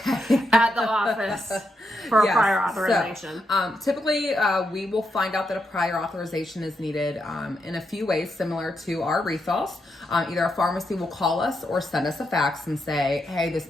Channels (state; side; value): normal; both; correlation 0.83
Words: the office for a prior authorization? So, typically, we will find out that a prior authorization is needed in a few ways similar to our refills. Either a pharmacy will call us or send us a fax and say, hey, this